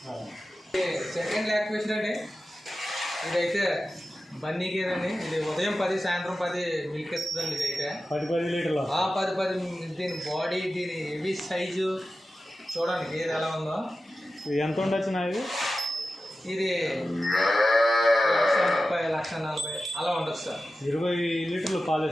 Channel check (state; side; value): normal; both; correlation 0.93